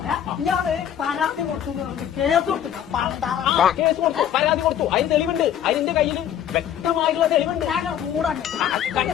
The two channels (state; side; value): quieter; right; 10.0 dB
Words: ഇയാള് പരാതി കൊടുത്തു കേസ് കൊടുത്തു. കേസ് കൊടുത്തു, പരാതി കൊടുത്തു. അതിന് തെളിവുണ്ട്. അതിന്റെ കയ്യിൽ വ്യക്തമായിട്ടുള്ള തെളിവുണ്ട്.